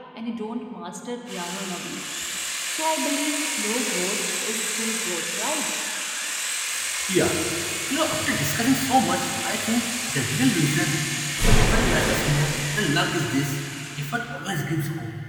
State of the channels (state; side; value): identical; both; correlation 1.00